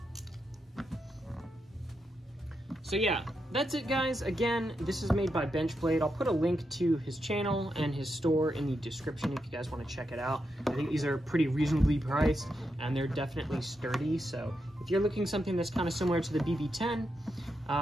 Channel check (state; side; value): normal; both; correlation 0.85